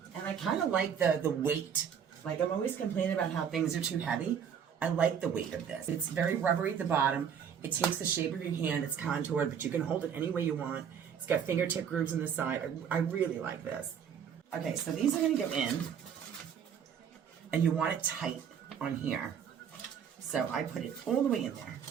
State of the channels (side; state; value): left; quieter; 7.8 dB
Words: And I kind of like the weight. Like, I'm always complaining about how things are too heavy. I like the weight of this. It's very rubbery at the bottom. It takes the shape of your hand. It's contoured, but you can hold it any way you want. It's got fingertip grooves on the side. I really like this. Okay, so these are gonna go in, and you want it tight on here. So I put it all the way in there.